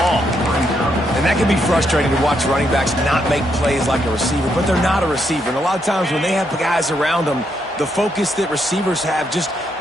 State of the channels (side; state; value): both; normal; correlation 0.77